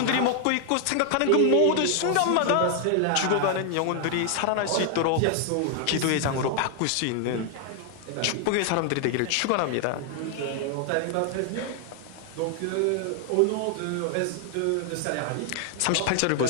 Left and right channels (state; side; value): different; both; correlation 0.00